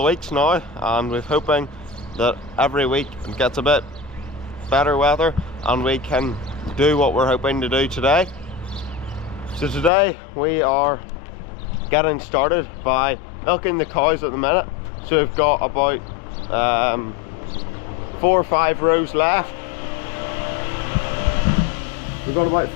weeks now, and we're hoping that every week it gets a bit better weather and we can do what we're hoping to do today. So today we are getting started by milking the cows at the minute. So we've got about 4 or 5 rows left. We've got about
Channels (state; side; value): drops out; right; at 9.9 s